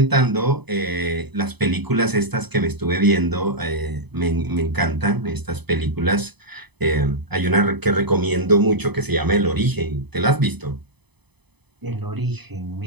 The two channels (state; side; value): late; left; 0.99 ms